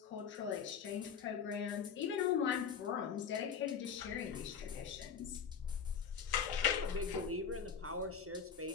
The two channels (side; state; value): right; quieter; 7.0 dB